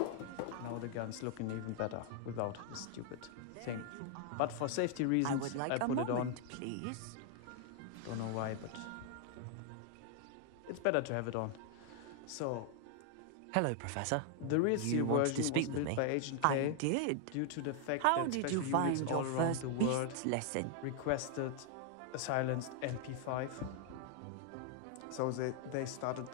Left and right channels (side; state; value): both; different; correlation 0.00